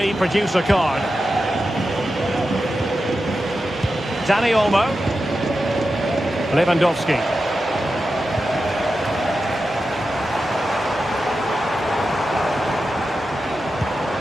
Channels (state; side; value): normal; both; correlation 0.91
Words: produce a card? Dani Olmo. Lewandowski.